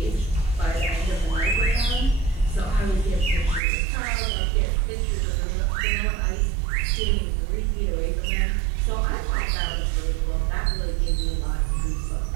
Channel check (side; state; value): left; drops out; at 3.6 s